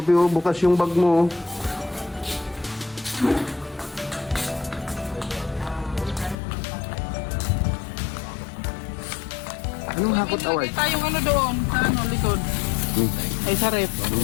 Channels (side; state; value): right; drops out; at 6.4 s